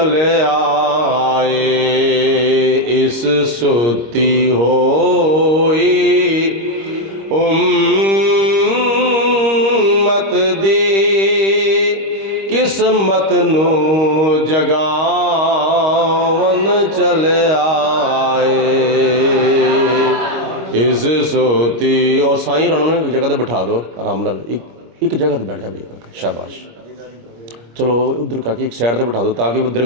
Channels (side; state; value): left; late; 25 ms